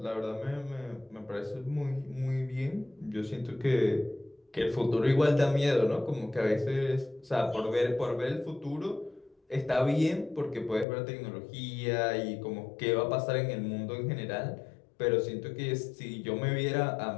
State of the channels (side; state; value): right; drops out; at 10.9 s